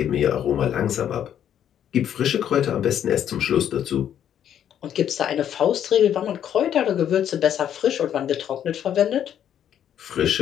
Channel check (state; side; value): quieter; right; 9.8 dB